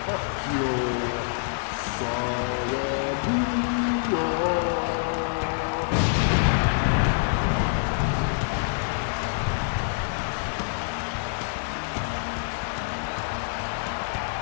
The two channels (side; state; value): right; silent; digital silence